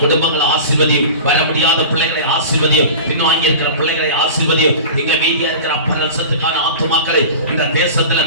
குடும்பங்களை ஆசீர்வதியும். வர முடியாத பிள்ளைகளை ஆசீர்வதியும். பின்வாங்கி இருக்கிற பிள்ளைகளை ஆசீர்வதியும். இங்க மீதியா இருக்கிற அப்பரசத்துக்கான ஆத்துமாக்களை இந்த தேசத்துல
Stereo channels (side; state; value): both; inverted; correlation -0.35